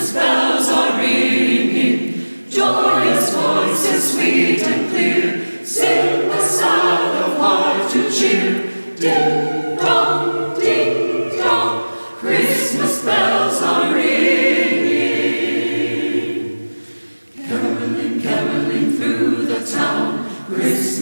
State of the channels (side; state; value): both; inverted; correlation -1.00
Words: bells are ringing, joyous voices sweet and clear, sing the sound of heart to cheer. Ding dong, Christmas bells are ringing. Caroling, caroling through the town,